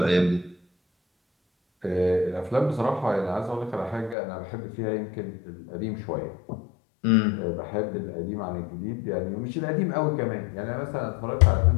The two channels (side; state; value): right; drops out; at 4.2 s